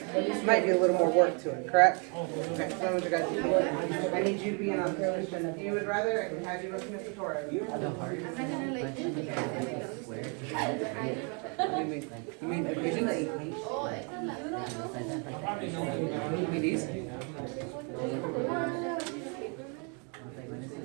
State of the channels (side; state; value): left; quieter; 36.2 dB